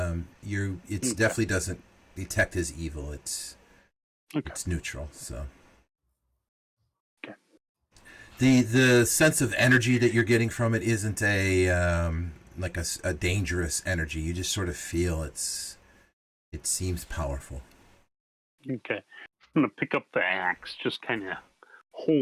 definitely doesn't detect as evil. It's neutral. So. Okay. The sense of energy that you're getting from it isn't like a dangerous energy. You just sort of feel it seems powerful. Okay. I'm going to pick up the axe, just kind of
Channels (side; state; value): both; identical; correlation 1.00